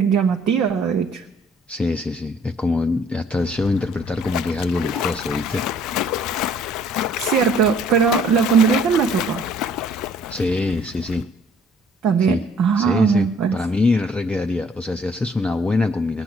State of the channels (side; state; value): both; normal; correlation 0.59